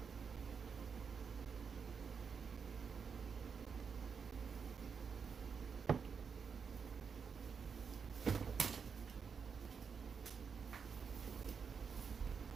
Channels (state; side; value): quieter; left; 6.0 dB